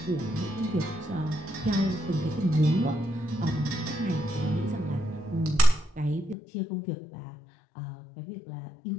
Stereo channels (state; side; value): drops out; right; at 6.4 s